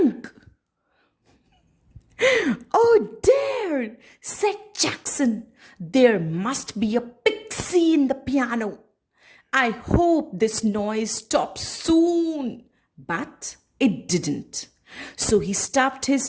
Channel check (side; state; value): both; identical; correlation 1.00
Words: "Oh dear," said Jackson. "There must be a pixie in the piano. I hope this noise stops soon." But it didn't. So he stuffed